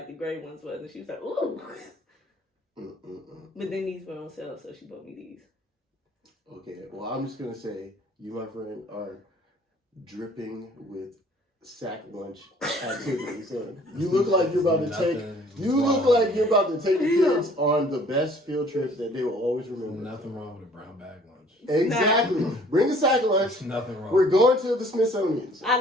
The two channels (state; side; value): normal; both; correlation 0.55